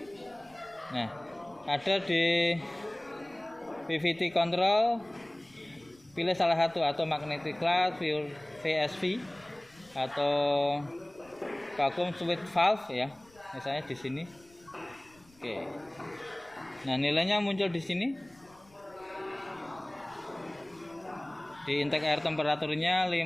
Nah, ada di PVT control, pilih salah satu, atau magnetic cloud, VSV, atau vacuum switch valve ya, misalnya di sini. Oke. Nah, nilainya muncul di sini. Di intake air temperaturnya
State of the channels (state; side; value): noise; left; rumble, 28 dB below the sound